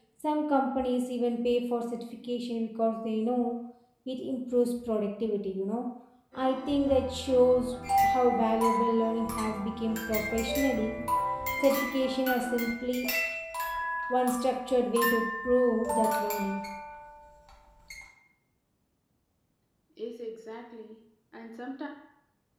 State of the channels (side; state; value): both; identical; correlation 1.00